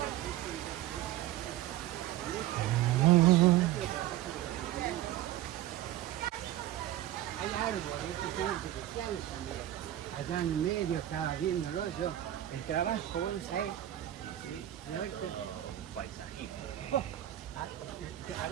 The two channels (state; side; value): quieter; left; 13.5 dB